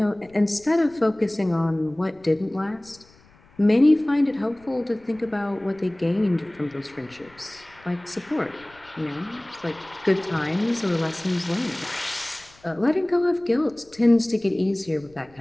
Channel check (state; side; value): noise; left; rumble, 28 dB below the sound